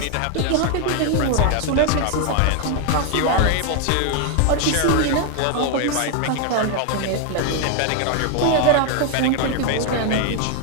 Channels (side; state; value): both; different; correlation 0.00